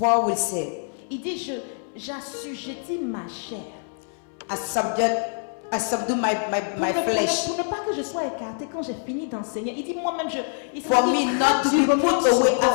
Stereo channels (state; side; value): silent; right; 62 dB below the other